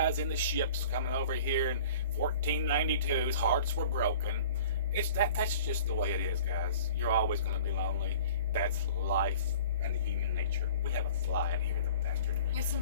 in the ships coming over here in 1492's hearts were broken. That's just the way it is, guys. You're always going to be lonely. That's life and human nature. We have a fly in here, the bastard. Yeah,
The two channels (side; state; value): both; inverted; correlation -0.45